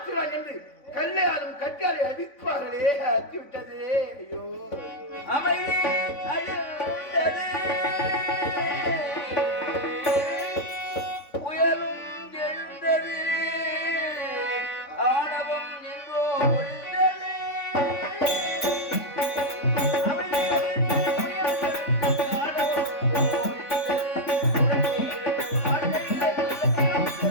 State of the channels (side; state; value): right; late; 3.5 ms